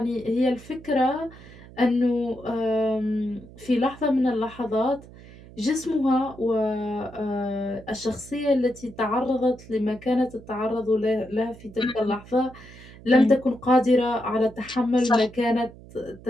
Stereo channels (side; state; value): right; noise; hum, 19 dB below the sound